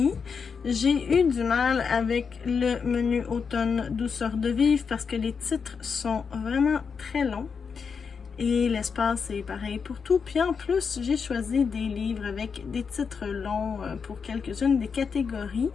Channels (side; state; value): right; quieter; 5.9 dB